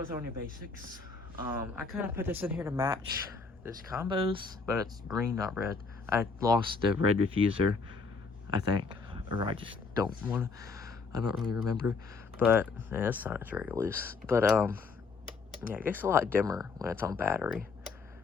Basics. I kind of put this in here to match this combos, but it's green, not red. I lost the red diffuser, I think. Or I just don't want to. I don't really remember. But, yeah, this sign is very loose. But, yeah, it gets a lot dimmer when it's on battery.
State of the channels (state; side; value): quieter; right; 4.5 dB